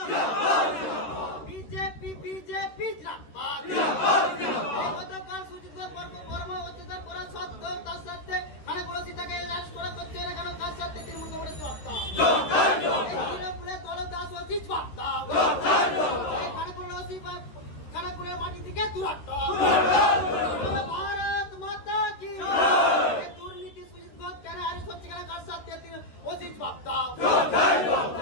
বিজেপি বিজেপি গতকাল সুজিত বর্মা অত্যাচার করা সত্ত্বেও তার সাথে খানাকুল তাকে অ্যারেস্ট করা করছে না কেন, কার সাথে তৃণমূল কংগ্রেস জবাব দাও। তৃণমূলের দলদাস অফিস জবাব দাও। খানাকুলের মাটি থেকে দূরত্ব। ভারত মাতা কি। দুর্নীতি সুজিত ঘোষ কেন অ্যারেস্ট হচ্ছে কেন, কার সাথে অফিস জবাব দাও।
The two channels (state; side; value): late; right; 13 ms